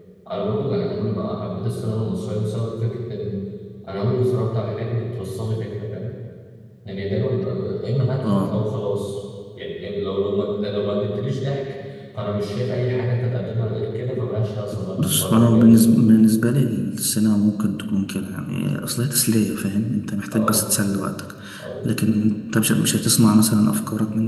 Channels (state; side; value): identical; both; correlation 1.00